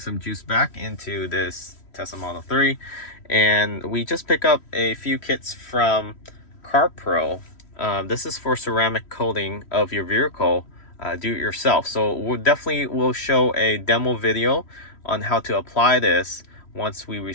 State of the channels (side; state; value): right; late; 3.1 ms